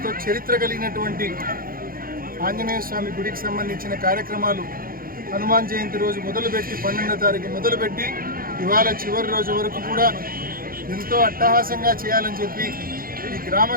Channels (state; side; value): late; left; 0.42 ms